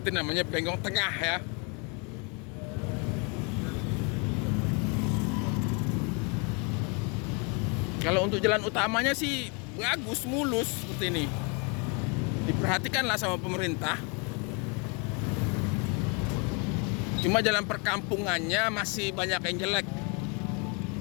namanya Bengkong Tengah ya. Kalau untuk jalan utamanya sih bagus, mulus seperti ini. Diperhatikanlah sama pemerintah. Cuma jalan perkampungannya masih banyak yang jelek.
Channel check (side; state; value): right; quieter; 33.4 dB